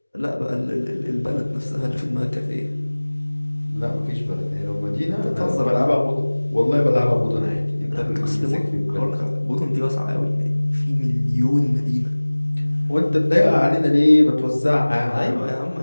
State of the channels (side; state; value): both; inverted; correlation -1.00